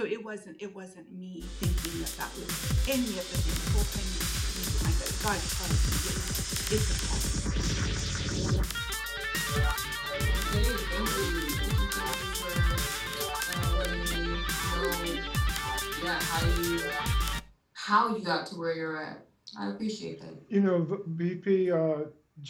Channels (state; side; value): identical; both; correlation 1.00